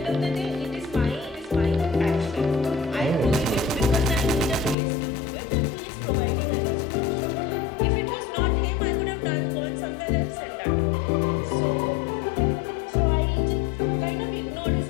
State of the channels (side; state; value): right; drops out; at 4.8 s